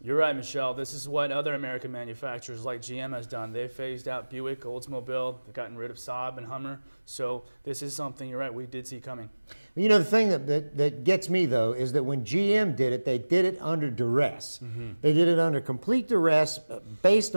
right, Michelle. This is what other American manufacturers like GM has done. They've phased out Buick, Oldsmobile, they've gotten rid of Saab and Hummer. So this is something, you're right, we did see coming. You know, the thing that gets me, though, is that when GM did it, they did it under duress. They did it under complete duress based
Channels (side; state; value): both; inverted; correlation -1.00